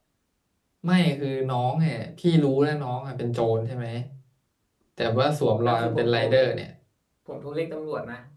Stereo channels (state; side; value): identical; both; correlation 1.00